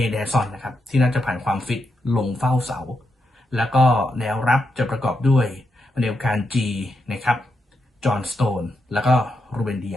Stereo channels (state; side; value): normal; both; correlation 0.84